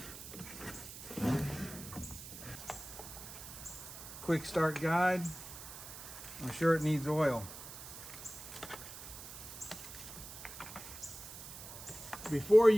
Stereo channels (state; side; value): noise; right; hiss, 12 dB below the sound